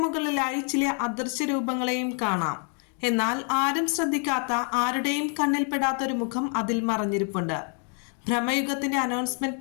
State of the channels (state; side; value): quieter; right; 38.5 dB